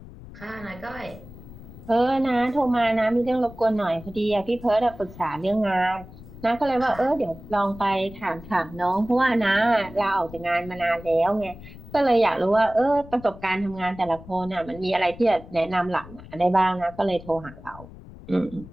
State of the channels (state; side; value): noise; left; rumble, 17 dB below the sound